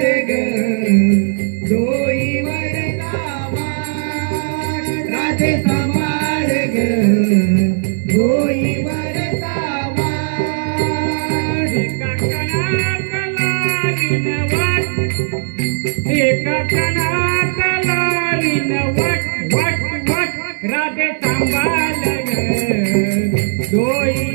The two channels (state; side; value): silent; left; 67 dB below the other